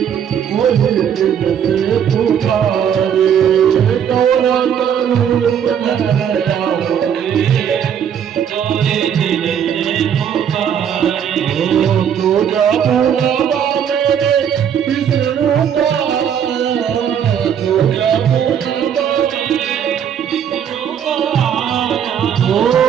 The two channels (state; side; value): quieter; left; 8.6 dB